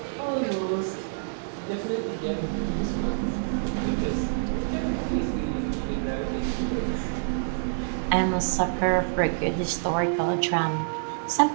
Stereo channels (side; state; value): left; silent; 60 dB below the other